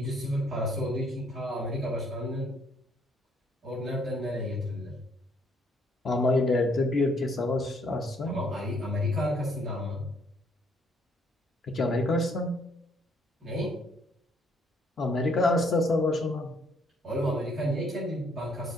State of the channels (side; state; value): both; normal; correlation 0.67